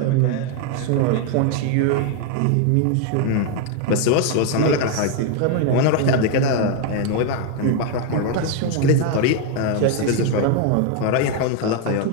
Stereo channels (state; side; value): different; both; correlation 0.01